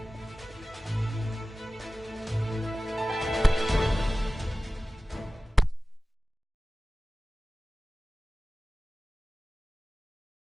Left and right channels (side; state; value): both; normal; correlation 0.96